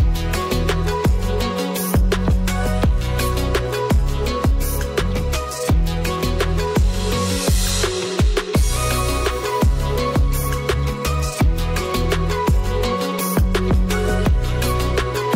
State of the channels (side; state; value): both; identical; correlation 1.00